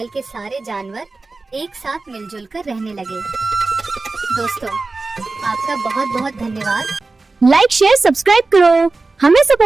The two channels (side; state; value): left; quieter; 3.6 dB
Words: के सारे जानवर एक साथ मिलजुल कर रहने लगे। दोस्तों, आपका बहुत बहुत धन्यवाद। लाइक शेयर सब्सक्राइब करो। हमें